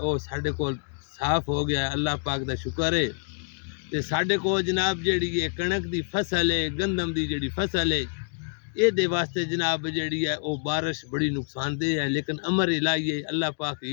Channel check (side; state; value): right; silent; 60 dB below the other